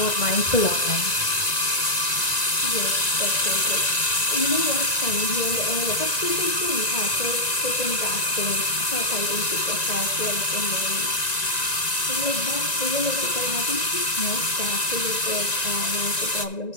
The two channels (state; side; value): late; right; 1.9 ms